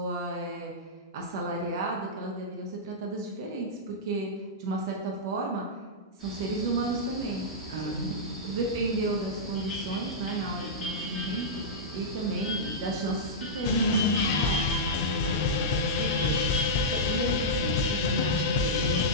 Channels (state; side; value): normal; both; correlation -0.11